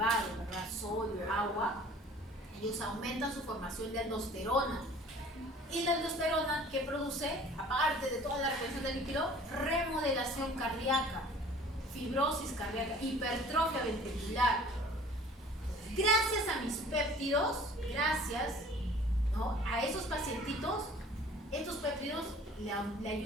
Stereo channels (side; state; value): both; normal; correlation 0.49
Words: ¿verdad? Sodio, agua, ellos aumentan su formación de aldosterona. Y la aldosterona, que produce, aparte de toda la retención del líquido, remodelación cardíaca, fibrosis cardíaca, hipertrofia ventricular. Gracias a mis péptidos, gracias, ¿no?, a esos pacientitos, estos péptidos le